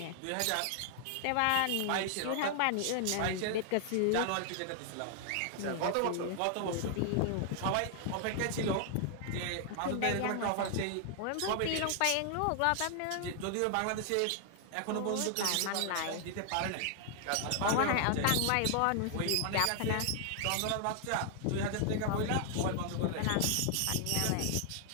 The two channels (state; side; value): different; both; correlation 0.00